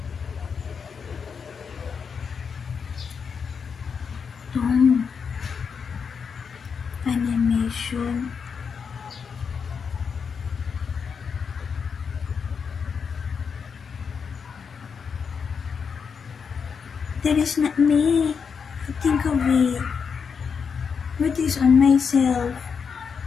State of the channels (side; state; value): right; quieter; 6.2 dB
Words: Tom. Animation. That is not me. I think of it. What is on myself?